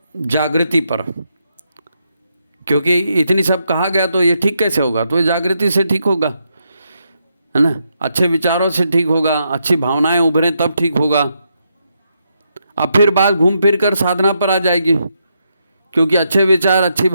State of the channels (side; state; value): both; inverted; correlation -0.80